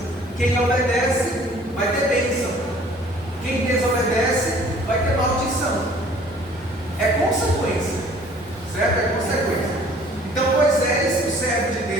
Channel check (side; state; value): both; normal; correlation 0.53